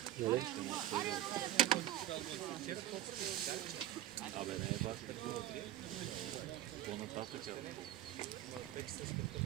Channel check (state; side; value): quieter; left; 12.8 dB